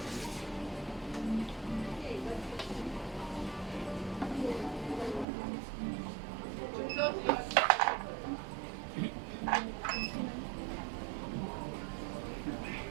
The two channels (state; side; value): drops out; left; at 5.2 s